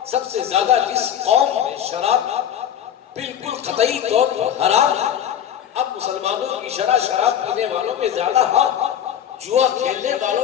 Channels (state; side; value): quieter; right; 9.8 dB